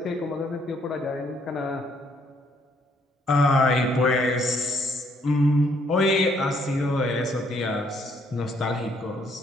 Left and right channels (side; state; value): both; normal; correlation 0.68